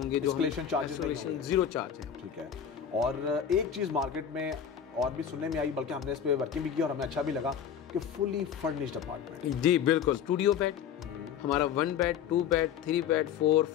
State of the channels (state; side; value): quieter; right; 8.5 dB